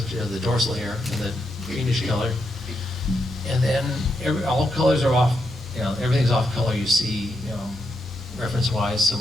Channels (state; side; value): normal; both; correlation 0.82